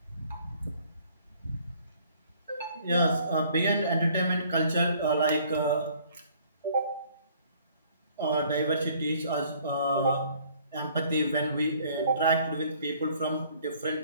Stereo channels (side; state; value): both; inverted; correlation -0.58